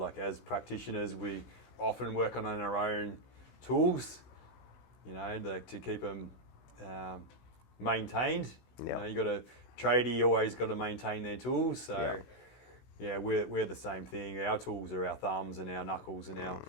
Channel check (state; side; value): late; right; 16 ms